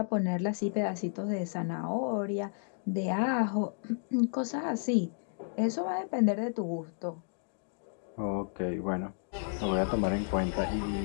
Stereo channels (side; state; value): right; silent; digital silence